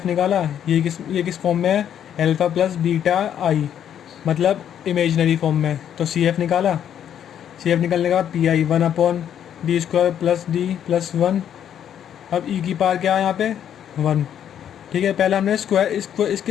निकाला। ये किस फॉर्म में है, अल्फ़ा प्लस बीटा आई, मतलब इमेजनरी फॉर्म में। तो सी एफ निकाला। सी एफ निकालने के बाद पी आई 1/d² + d + 1। अब ई की पावर क्या है यहाँ पे 1। ठीक है, पहले हमने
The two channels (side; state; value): right; quieter; 9.6 dB